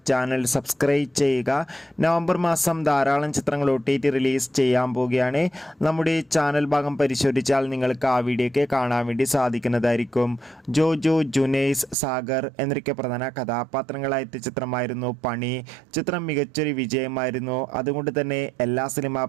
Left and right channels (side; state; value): left; drops out; at 12.0 s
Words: ചാനൽ സബ്സ്ക്രൈബ് ചെയ്യുക. നവംബർ മാസം ധാരാളം ചിത്രങ്ങൾ OTT റിലീസ് ചെയ്യാൻ പോവുകയാണ്. നമ്മുടെ ചാനൽ ഭാഗം പരിശോധിച്ചാൽ നിങ്ങൾക്ക് ആ വീഡിയോയ്ക്ക് കാണാൻ വേണ്ടി സാധിക്കുന്നതായിരിക്കും. ജോജു, ജുനൈസ്, സാഗർ എന്നൊക്കെ പ്രധാന കഥാപാത്രങ്ങളായ ചിത്രമായിരുന്നു പണി. ചിത്രം മികച്ചൊരു വിജയമായിരുന്നു. അതുകൊണ്ട് തന്നെ എല്ലാ സിനിമാ